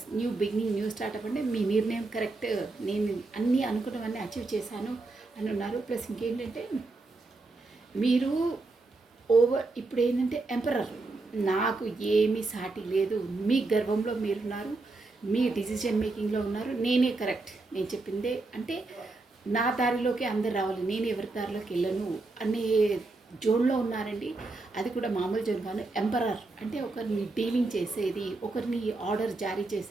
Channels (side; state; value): left; quieter; 3.4 dB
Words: new beginning, new startup అంటే మీ నిర్ణయం కరెక్ట్, నేను అన్నీ అనుకున్నవన్నీ అచీవ్ చేశాను అని ఉన్నారు. ప్లస్ ఇంకేంటంటే మీరు ఇప్పుడు ఏంటంటే ఎంపరర్, నాకు ఏమీ సాటి లేదు, మీ గర్వంలో మీరున్నారు, మీ డిసిజన్ మేకింగ్లో ఉన్నారు, నేనే కరెక్ట్, నేను చెప్పిందే అంటే నా దారిలోకి అందరు రావాలి, నేను ఎవరి దారిలోకి వెళ్ళను అనే జోన్లో ఉన్నారండి. అది కూడా మామూలు జోన్ కాదు. ఎంపరర్ అంటే ఒకరిని డీలింగ్ చేసేది, ఒకరిని ఆర్డర్ జారీ